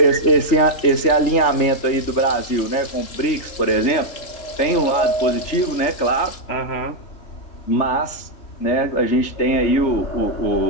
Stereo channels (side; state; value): right; late; 3.3 ms